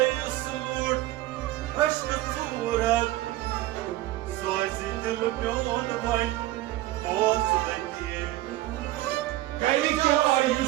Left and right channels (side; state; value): left; quieter; 16.2 dB